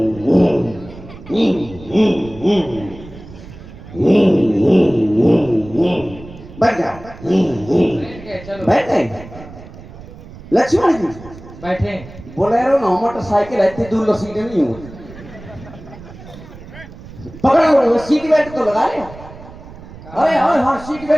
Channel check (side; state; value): right; noise; rumble, 17 dB below the sound